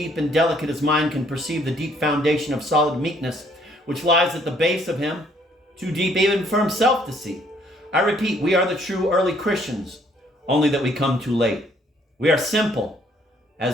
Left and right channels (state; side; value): normal; both; correlation 0.64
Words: and delicate as mine can perceive the deep foundation of solid meekness which lies at the base of him, too deep even for himself to see. I repeat, we are the true early Christians, only that we come too late. We are simple,